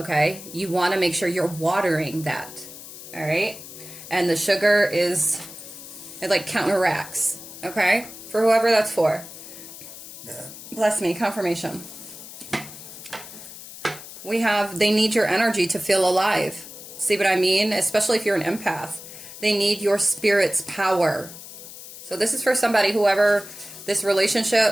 You want to make sure you're watering that, all right? And the sugar it like counteracts, okay? For whoever that's for. Yeah. Bless me, confirmation. They need your energy to feel alive. See what I mean? Especially if you're an empath. They need your spirit's power. So this is for somebody, whoever this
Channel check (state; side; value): noise; left; hiss, 14 dB below the sound